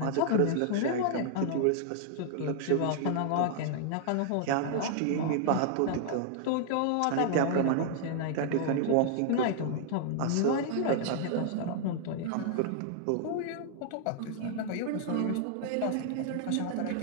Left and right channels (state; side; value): different; both; correlation -0.01